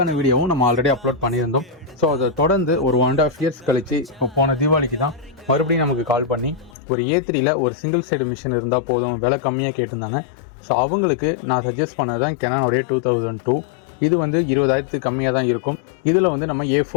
வீடியோவும் நம்ம ஆல்ரெடி அப்லோட் பண்ணியிருந்தோம். ஸோ அதை தொடர்ந்து ஒரு 1.5 இயர்ஸ் கழிச்சு இப்போ போன தீபாவளிக்கு தான் மறுபடியும் நமக்கு கால் பண்ணி ஒரு A3யில் ஒரு சிங்கிள் சைடு மிஷின் இருந்தால் போதும், விலை கம்மியாக கேட்டிருந்தாங்க. ஸோ அவங்களுக்கு நான் சஜஸ்ட் பண்ணது தான் கெனானுடைய 2002. இது வந்து 20,000 கம்மியாக தான் இருக்கும். இதில் வந்து நம்ம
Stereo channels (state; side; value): drops out; right; at 6.8 s